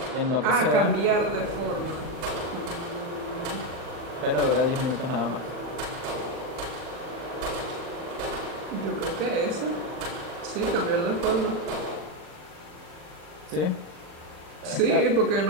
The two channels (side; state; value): left; late; 40 ms